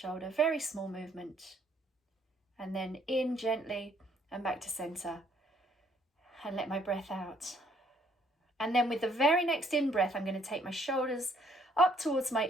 Very small movement. And then in gently and back to center. And let my breath out. And then with the very next in-breath, I'm going to take my shoulders up towards my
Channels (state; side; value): normal; both; correlation 0.65